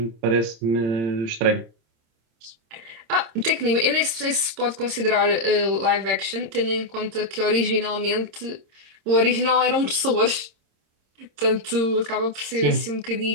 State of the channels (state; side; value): late; left; 26 ms